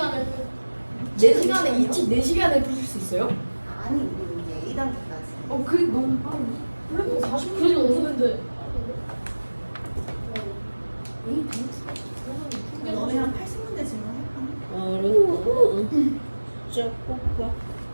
4시간에 4시간에 풀 수 있어요? 아니 우리 이제 A단계까지. 그게 너무 빠르네. 그래도 40분 그래도 없는데. 너네 한 80문제 질문할까? 어려워. 진짜 꽃밭.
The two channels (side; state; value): both; inverted; correlation -1.00